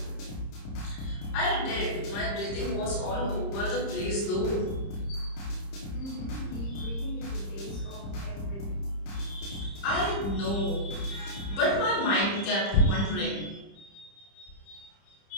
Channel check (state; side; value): late; right; 30 ms